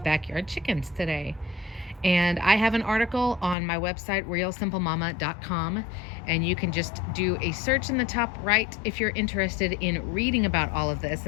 backyard chickens today. And I have an article on my website, realsimplemama.com, and you can just do a search in the top right if you're interested in reading about all of this.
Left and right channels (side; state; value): right; drops out; at 3.6 s